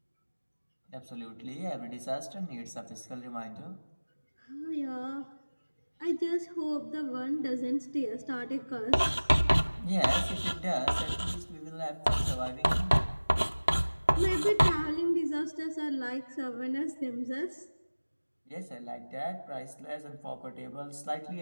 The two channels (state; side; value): inverted; both; correlation -1.00